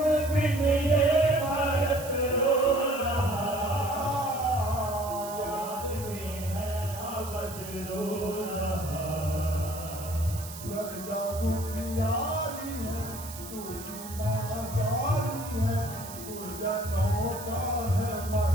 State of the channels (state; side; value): noise; right; hiss, 13 dB below the sound